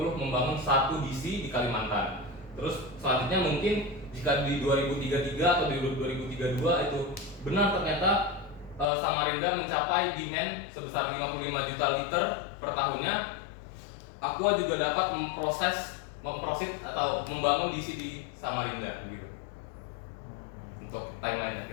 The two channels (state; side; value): drops out; right; at 8.8 s